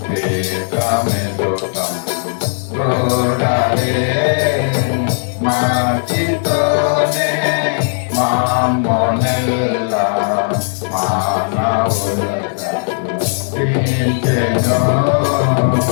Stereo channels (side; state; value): right; silent; 64 dB below the other